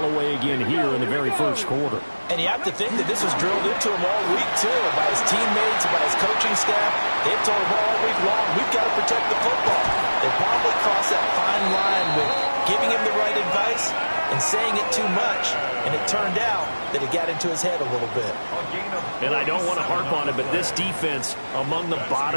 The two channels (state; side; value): inverted; both; correlation -1.00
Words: away again here in the very first quarter. And you have to think that this was drilled into him all week, too, by his teammates, by his coaching staff. They've told him all week long, we've got to protect the football. They probably crossed that fine line with giving him the right advice and saying it too much, and it turned out that it got into his head a little bit. And I don't want to harp on it, but this defense among the